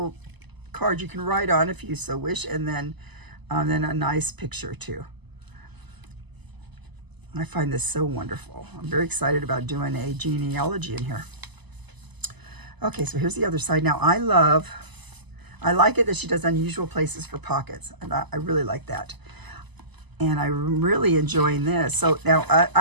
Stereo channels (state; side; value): late; left; 0.99 ms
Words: card you can write on if you so wish. And then a nice picture too. I find this so wonderful. I'm very excited about doing a genealogy in here. Okay, so here's the other side. Now I like it that she does unusual places for pockets. And I really like that. And I'm really enjoying this. So now